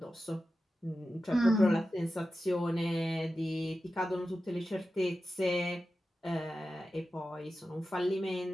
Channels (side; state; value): both; normal; correlation 0.92